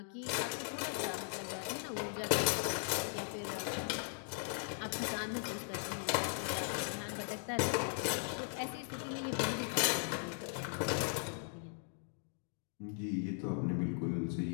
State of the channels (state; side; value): silent; right; 52 dB below the other